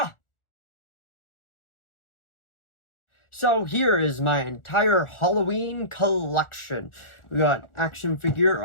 So here is my entire Halloween collection. We got action figure,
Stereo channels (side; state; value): right; late; 1.4 ms